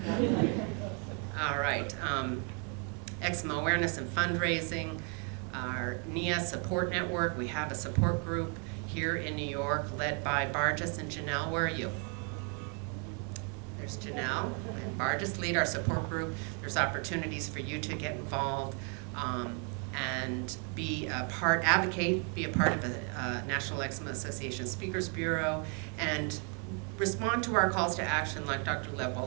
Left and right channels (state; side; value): quieter; left; 37.9 dB